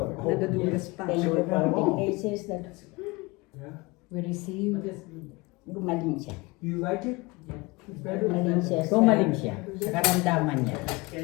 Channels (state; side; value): quieter; right; 24.1 dB